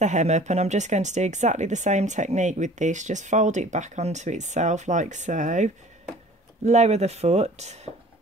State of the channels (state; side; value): normal; both; correlation 0.48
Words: hem up, and I'm just going to do exactly the same technique with this. Just fold it back onto itself like so, lower the foot,